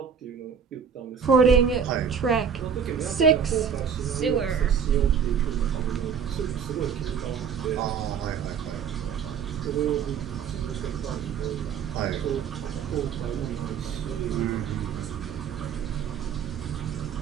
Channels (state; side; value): quieter; left; 7.0 dB